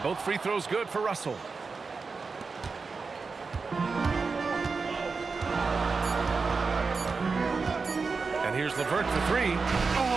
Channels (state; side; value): quieter; left; 4.6 dB